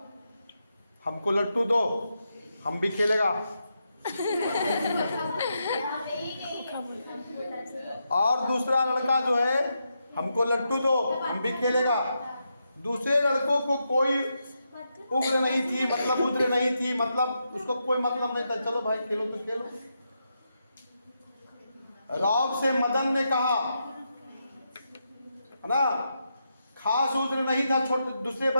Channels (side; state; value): both; inverted; correlation -0.84